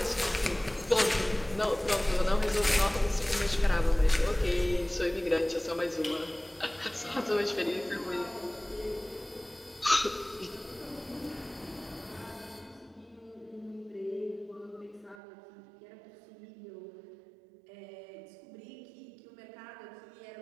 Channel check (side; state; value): left; drops out; at 15.2 s